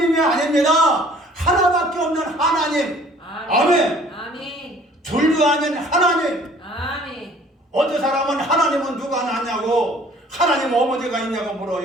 아닙니다. 하나밖에 없는 하나님. 아멘. 아멘. 둘도 아닌 하나님. 아멘. 어떤 사람은 하나님은 누가 낳냐고, 하나님 어머니가 있냐고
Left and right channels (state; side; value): normal; both; correlation 0.54